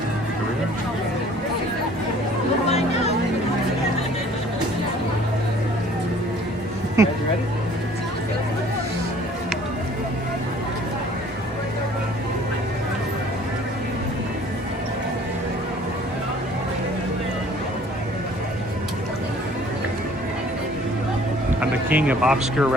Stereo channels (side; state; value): both; normal; correlation 0.53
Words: king of obscure